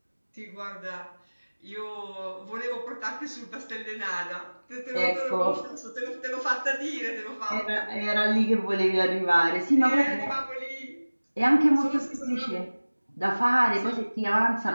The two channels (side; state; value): both; inverted; correlation -1.00